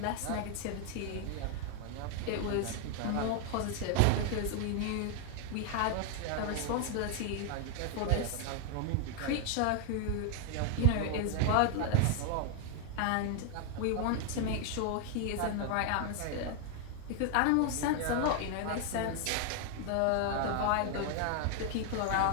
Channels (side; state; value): both; different; correlation 0.00